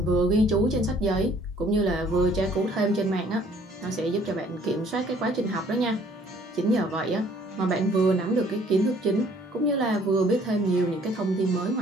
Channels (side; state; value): both; normal; correlation 0.59